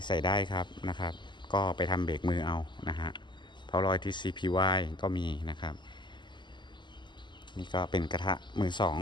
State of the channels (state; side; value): late; right; 0.22 ms